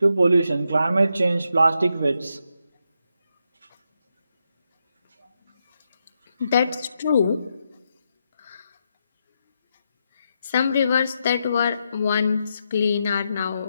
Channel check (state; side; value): inverted; both; correlation -0.83